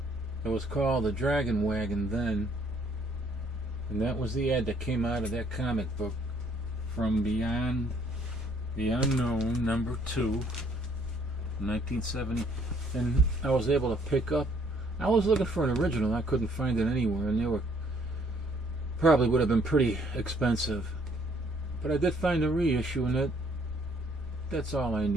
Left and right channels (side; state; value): both; normal; correlation 0.64